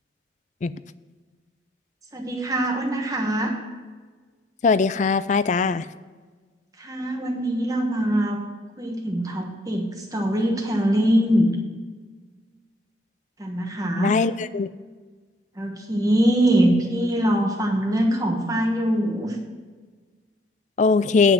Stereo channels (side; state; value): both; normal; correlation 0.66